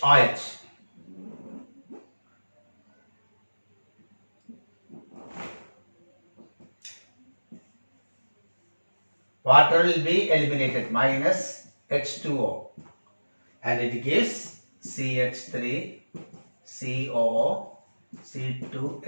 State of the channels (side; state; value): both; inverted; correlation -1.00